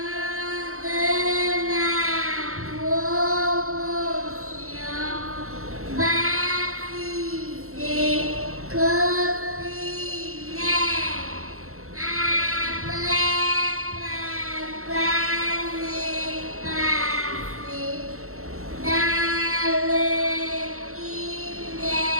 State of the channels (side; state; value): left; late; 0.63 ms